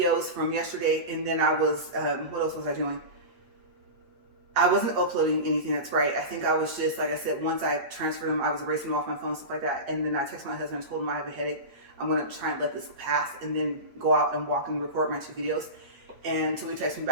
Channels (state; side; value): late; left; 8.3 ms